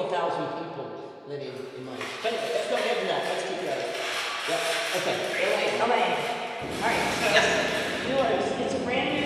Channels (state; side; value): identical; both; correlation 1.00